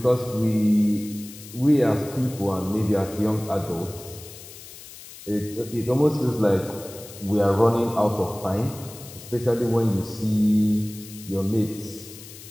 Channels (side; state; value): left; noise; hiss, 16 dB below the sound